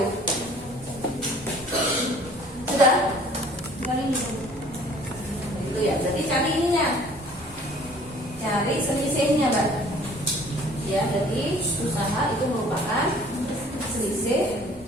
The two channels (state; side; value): normal; both; correlation 0.52